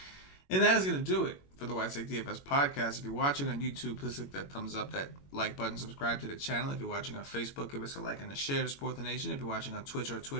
And that is gonna do it for the White Sox DFS podcast. If you're watching on YouTube, please click that thumbs up, that like button, subscribe to the channel. If you're watching on Facebook, give us a like and a share to support the nation. If you're watching on Twitch or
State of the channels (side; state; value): right; late; 21 ms